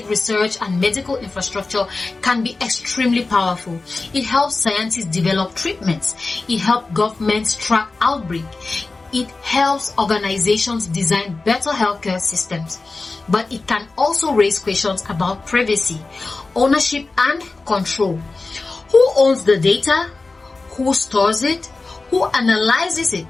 research, and medical infrastructure can be extremely powerful. It helps scientists develop treatments. It helps governments track outbreaks. It helps organizations design better healthcare systems. But it can also raise questions about privacy, ownership, and control. Who owns the data? Who stores it? Who analyzes it?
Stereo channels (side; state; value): right; quieter; 3.6 dB